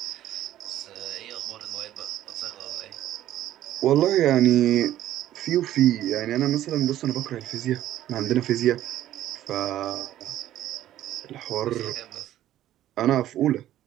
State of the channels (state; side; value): quieter; left; 12.9 dB